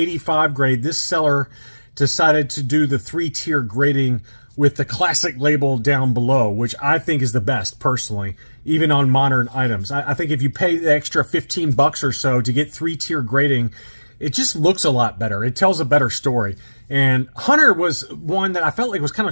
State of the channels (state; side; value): inverted; both; correlation -1.00